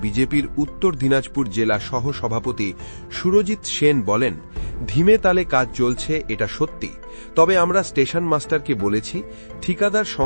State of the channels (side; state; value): both; inverted; correlation -1.00